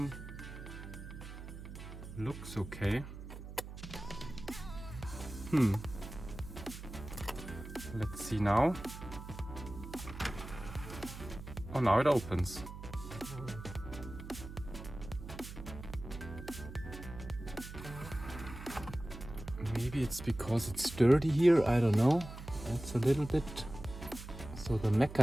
Looks okay. Let's see now. Oh, now it opens. Maybe it's because it's dirty here, I don't know. It's a little bit. So the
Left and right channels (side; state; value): right; noise; hum, 11 dB below the sound